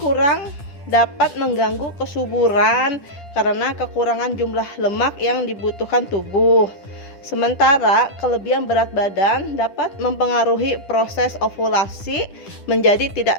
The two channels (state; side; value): late; right; 10 ms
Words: kurang dapat mengganggu kesuburan karena kekurangan jumlah lemak yang dibutuhkan tubuh. Sementara kelebihan berat badan dapat mempengaruhi proses ovulasi menjadi